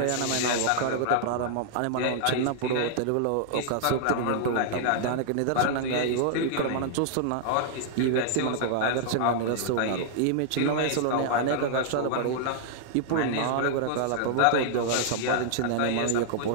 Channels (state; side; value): different; both; correlation -0.01